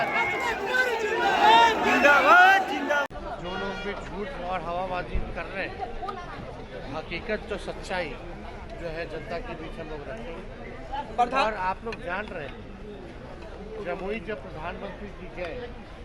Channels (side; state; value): both; identical; correlation 1.00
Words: जिंदाबाद जिंदाबाद। जो लोग भी झूठ और हवाबाजी कर रहे हैं, हकीकत तो सच्चाई जो है जनता के बीच हम लोग रखेंगे। और आप लोग जान रहे हैं, जमुई जब प्रधानमंत्री जी गए